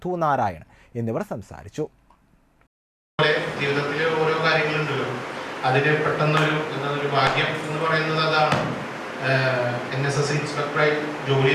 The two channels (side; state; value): both; identical; correlation 1.00